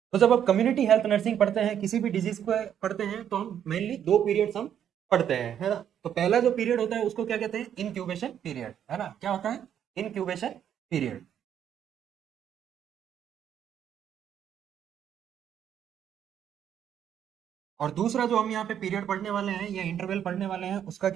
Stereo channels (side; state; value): left; quieter; 9.5 dB